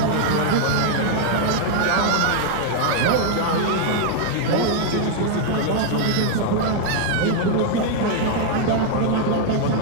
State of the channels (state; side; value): different; both; correlation 0.00